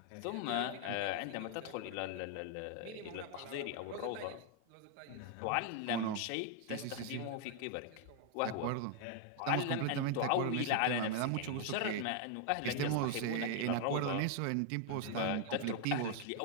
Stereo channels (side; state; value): both; different; correlation 0.00